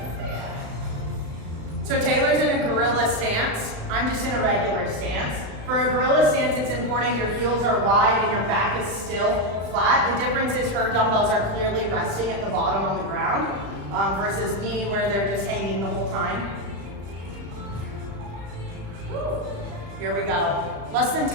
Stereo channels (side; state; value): left; late; 35 ms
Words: because they So Taylor's in a gorilla stance. I'm just in a regular stance. For a gorilla stance, it's important your heels are wide and your back is still flat. The difference is her dumbbells are clearly resting at the bottom on the ground versus me where they're just hanging the whole time. Woo. Here we go. Less than